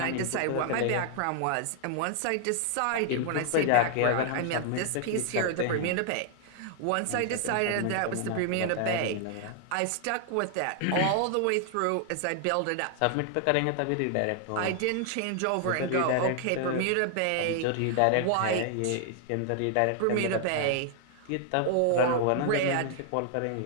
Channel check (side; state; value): both; different; correlation 0.00